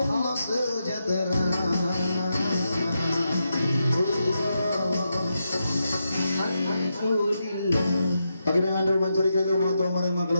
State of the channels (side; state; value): both; inverted; correlation -0.85